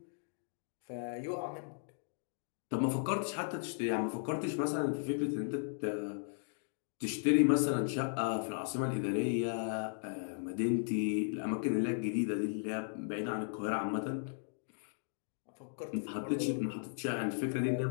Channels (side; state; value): right; silent; digital silence